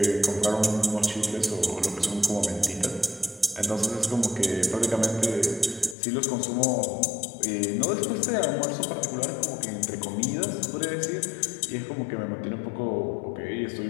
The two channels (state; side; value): drops out; right; at 6.0 s